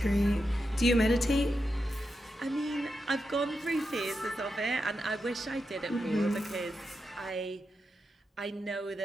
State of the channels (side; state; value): both; normal; correlation 0.87